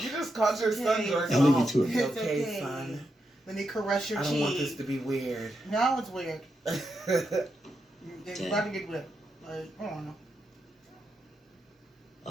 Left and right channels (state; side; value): normal; both; correlation 0.84